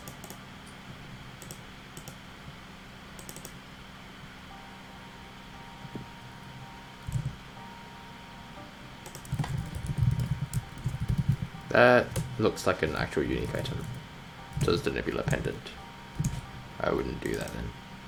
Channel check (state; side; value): identical; both; correlation 1.00